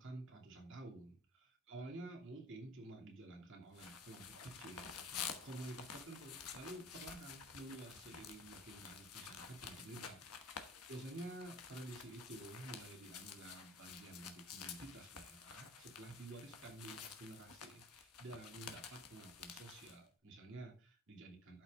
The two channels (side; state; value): both; normal; correlation 0.45